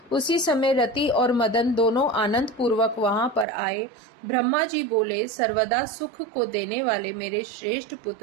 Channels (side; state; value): left; drops out; at 3.5 s